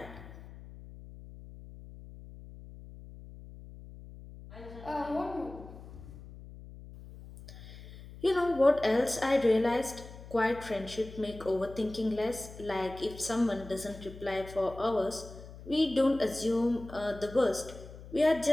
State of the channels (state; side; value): noise; left; hum, 16 dB below the sound